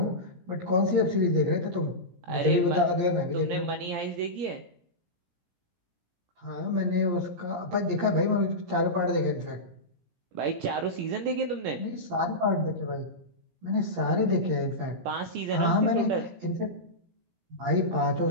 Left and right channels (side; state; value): left; late; 17 ms